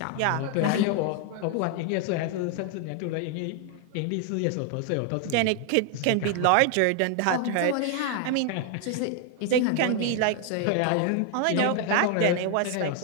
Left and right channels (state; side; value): different; both; correlation 0.00